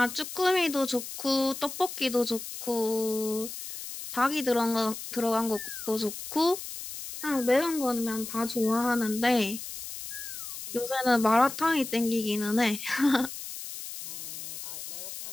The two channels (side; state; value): left; noise; hiss, 9 dB below the sound